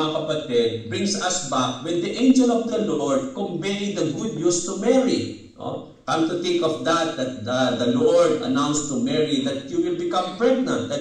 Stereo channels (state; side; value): identical; both; correlation 1.00